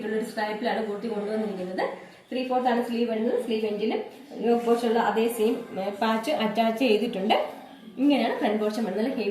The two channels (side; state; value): both; identical; correlation 1.00